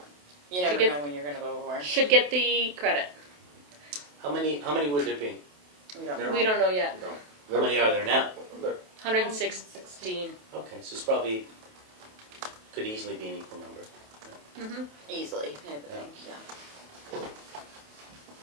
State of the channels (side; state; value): left; late; 28 ms